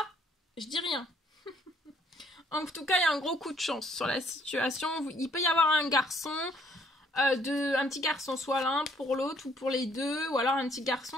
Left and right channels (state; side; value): normal; both; correlation 0.65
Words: je dis rien. En tout cas, il y a un gros coup de chance sur la situation. Il peut y avoir un garçon, un petit garçon, soit l'un pour l'autre ou pour les deux, ou alors un petit